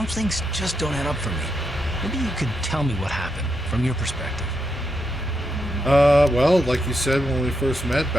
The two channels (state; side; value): normal; both; correlation 0.82